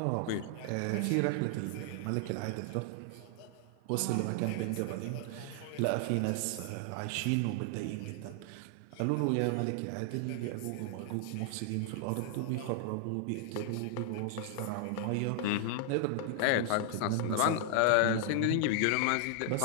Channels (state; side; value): different; both; correlation 0.00